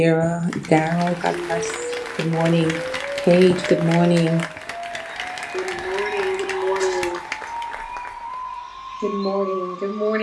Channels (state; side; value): identical; both; correlation 1.00